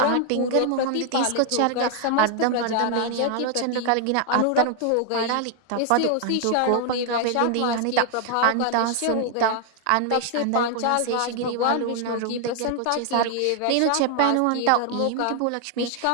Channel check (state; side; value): different; both; correlation 0.00